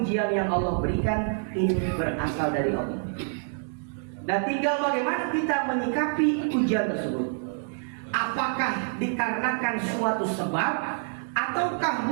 yang Allah berikan ini berasal dari Allah. Dan tinggal bagaimana kita menyikapi ujian tersebut. Apakah dikarenakan suatu sebab, ataukah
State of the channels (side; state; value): left; silent; 60 dB below the other